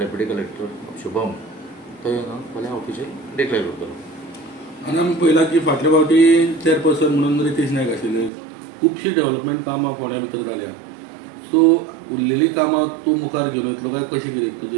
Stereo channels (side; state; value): left; drops out; at 8.3 s